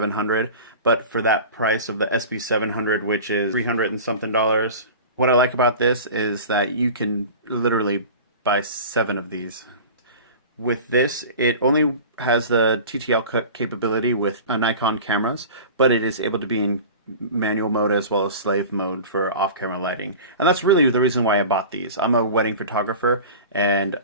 But for that price of the SB700, which is $300 and something, what I like about this is that you can literally buy 7 of these. With this, it only has the TTL capability with Nikon cameras, but it is able to be in manual mode as well as slave mode for off-camera lighting. And that's really the reason why I bought these. I'm a wedding photographer, and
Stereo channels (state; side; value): inverted; both; correlation -0.36